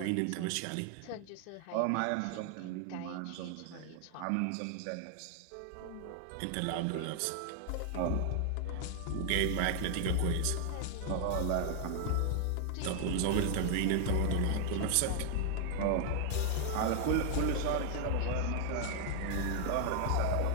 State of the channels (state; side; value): different; both; correlation 0.00